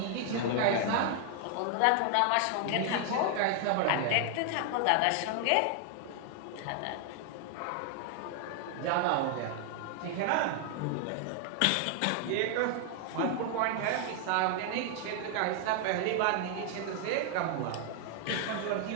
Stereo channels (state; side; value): different; both; correlation 0.00